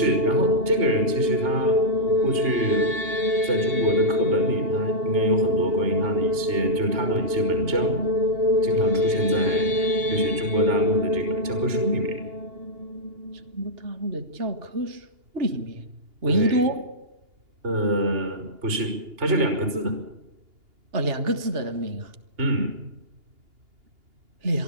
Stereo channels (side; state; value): left; late; 2.8 ms